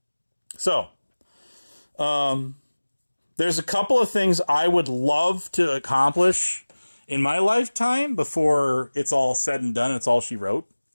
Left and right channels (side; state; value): both; inverted; correlation -1.00